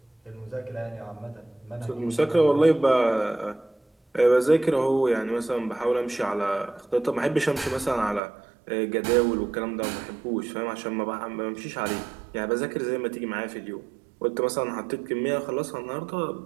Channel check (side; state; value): left; drops out; at 8.2 s